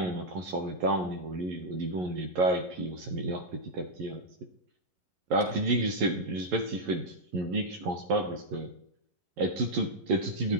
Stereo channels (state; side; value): late; left; 11 ms